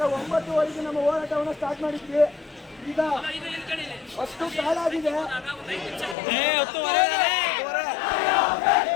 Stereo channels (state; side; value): drops out; right; at 6.2 s